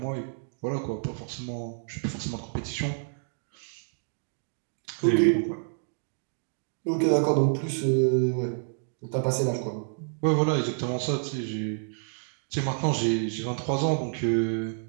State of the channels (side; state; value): left; silent; digital silence